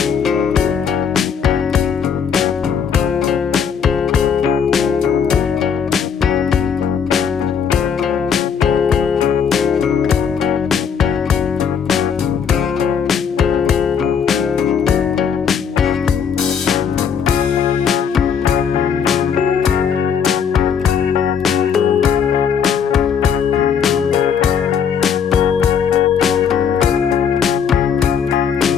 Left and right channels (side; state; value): right; quieter; 7.1 dB